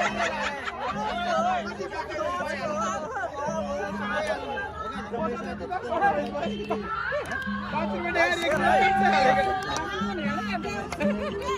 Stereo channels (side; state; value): both; identical; correlation 1.00